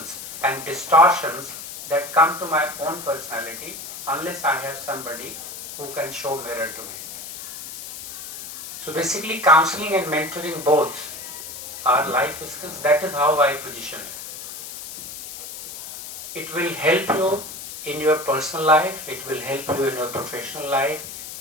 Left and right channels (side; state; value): left; noise; hiss, 10 dB below the sound